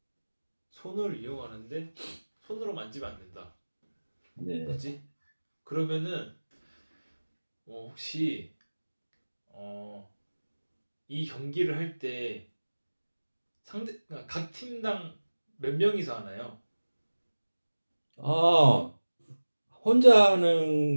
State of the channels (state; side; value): inverted; both; correlation -1.00